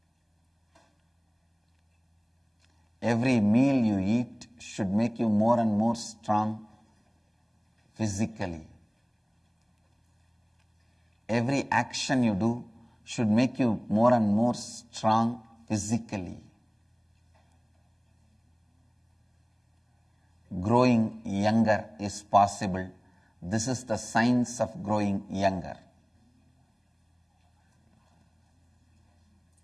Every meal you eat should make you more and more strong physically. Every action you do should make you more and more strong physically. Growing younger is possible. This is the science of growing younger.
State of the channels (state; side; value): identical; both; correlation 1.00